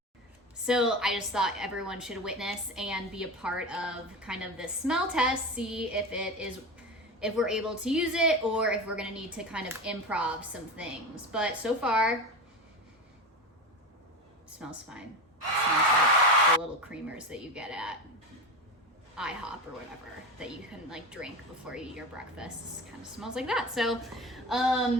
So I just thought everyone should witness and be a part of kind of this smell test, see if we're able to use it or if we're gonna need to kind of improv some things. But so far, it smells fine. It smells like the little creamers that you get at IHOP or whatever that you can like drink before you eat your breakfast. It kind of smells like that. So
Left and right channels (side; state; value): both; normal; correlation 0.23